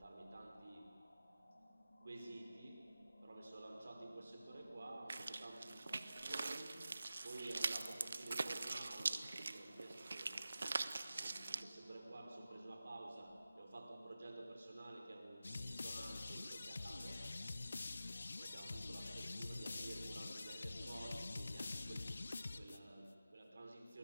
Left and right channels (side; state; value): both; inverted; correlation -0.94